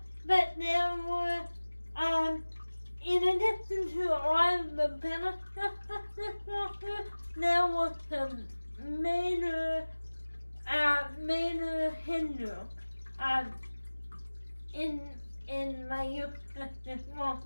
but there were, in addition to all the benefits of this walker, there were some major hindrances. In my use of this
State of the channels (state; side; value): inverted; both; correlation -1.00